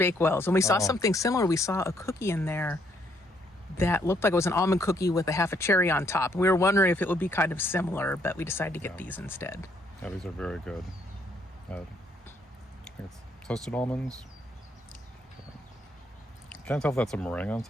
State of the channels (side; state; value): both; normal; correlation 0.69